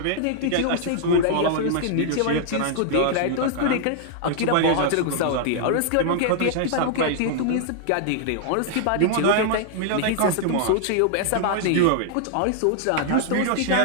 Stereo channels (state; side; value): different; both; correlation -0.01